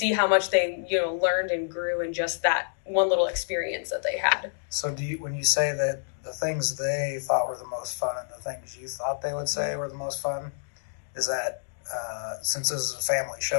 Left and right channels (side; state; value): right; silent; digital silence